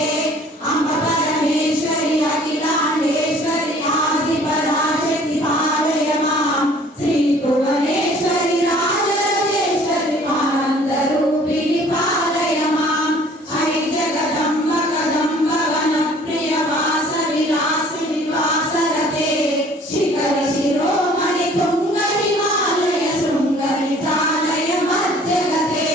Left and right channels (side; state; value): both; normal; correlation 0.53